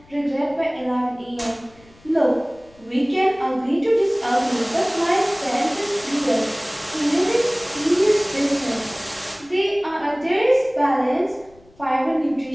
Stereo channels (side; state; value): left; noise; rumble, 28 dB below the sound